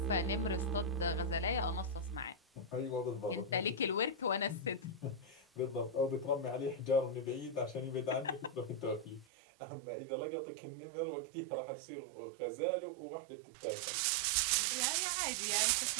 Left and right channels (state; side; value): drops out; left; at 9.2 s